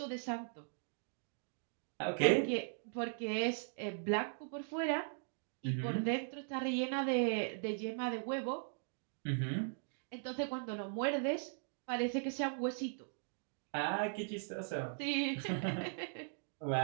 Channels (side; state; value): left; silent; digital silence